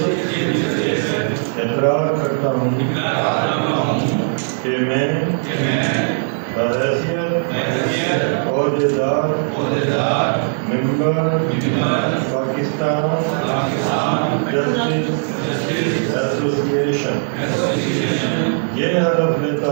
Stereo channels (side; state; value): left; silent; 65 dB below the other